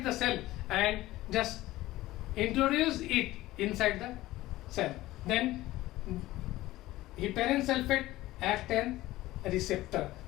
the cell and just introduce it inside the cell. Then heparin sulfate acts as a receptor.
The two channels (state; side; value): quieter; right; 17.0 dB